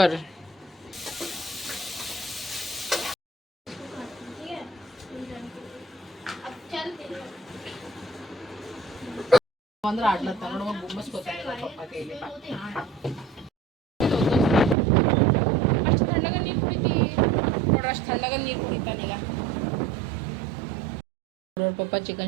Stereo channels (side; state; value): left; drops out; at 14.8 s